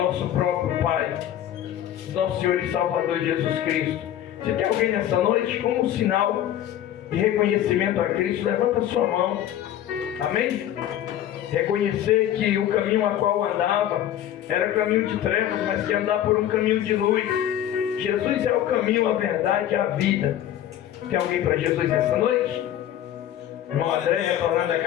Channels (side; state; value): right; quieter; 11.5 dB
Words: próprio Pai, do nosso Senhor e Salvador Jesus Cristo. Se tem alguém nessa noite, como um sinal de reconhecimento a Cristo, levanta a sua mão. Amém? Reconhecer que o caminho a qual andava era caminho de trevas, mas que andar por um caminho de luz. Jesus é o caminho, a verdade e a vida. Tem alguém para Jesus nessa noite? Irmão André, retornando à